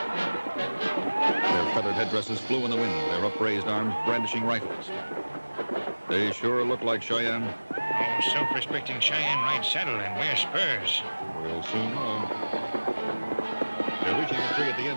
Their feathered headdresses flew in the wind, their upraised arms brandishing rifles. They sure look like Cheyenne. Oh, self-respecting Cheyenne ride saddle and wear spurs. We'll soon know. They're reaching a tree at the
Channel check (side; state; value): both; inverted; correlation -1.00